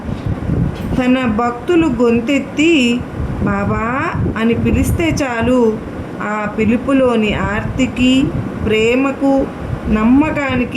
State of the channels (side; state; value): both; identical; correlation 1.00